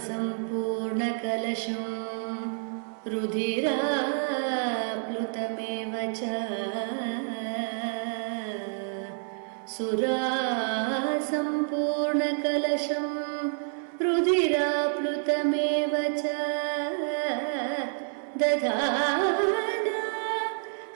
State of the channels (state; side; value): silent; left; 59 dB below the other